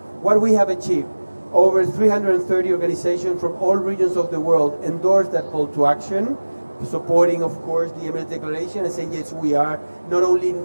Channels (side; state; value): both; inverted; correlation -1.00